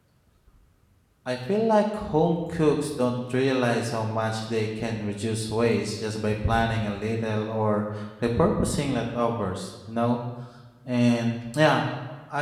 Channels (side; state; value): both; identical; correlation 1.00